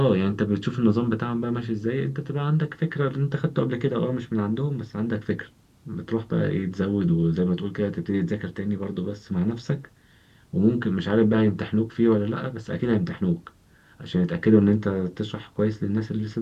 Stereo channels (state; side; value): identical; both; correlation 1.00